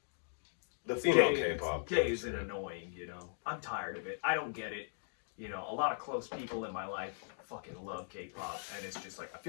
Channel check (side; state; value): right; silent; digital silence